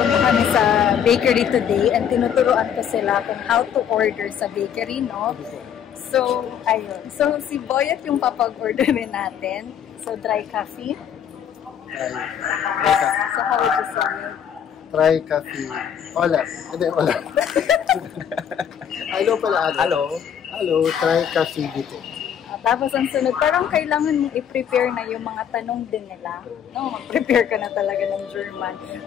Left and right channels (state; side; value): quieter; right; 8.7 dB